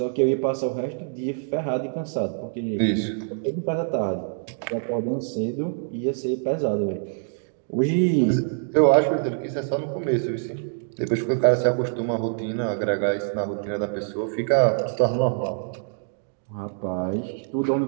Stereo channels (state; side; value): silent; left; digital silence